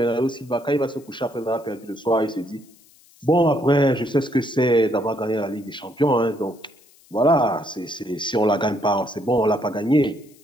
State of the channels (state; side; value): noise; left; hiss, 28 dB below the sound